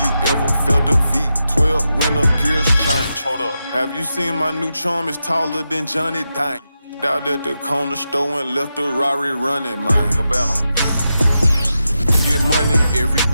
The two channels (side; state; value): both; inverted; correlation -0.88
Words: never felt a V12 when the gears change. Hold up. Have you seen my new charm? It's taller than Johnny Dang. Out at the corner store and left the Rari running, man. Cabela. Get money every